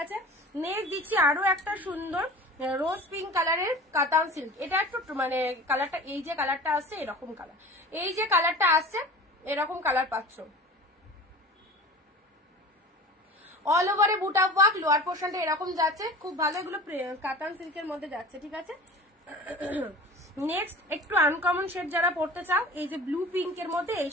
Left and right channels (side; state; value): both; normal; correlation 0.38